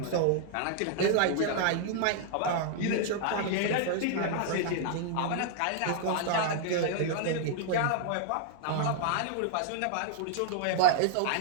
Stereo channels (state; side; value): different; both; correlation -0.01